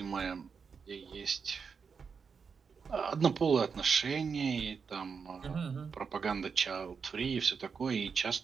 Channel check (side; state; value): left; quieter; 5.8 dB